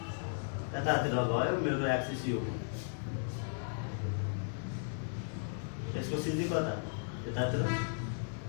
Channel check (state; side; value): silent; right; digital silence